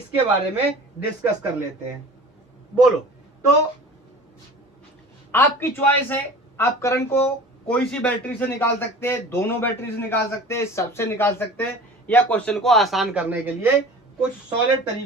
बारे में डिस्कस कर लेते हैं। बोलो, तो आपकी चॉइस है, आप करंट को कोई सी बैटरी से निकाल सकते हैं, दोनों बैटरी से निकाल सकते हैं, सबसे निकाल सकते हैं, या क्वेश्चन को आसान करने के लिए कुछ सॉलिड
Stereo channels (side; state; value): both; normal; correlation 0.40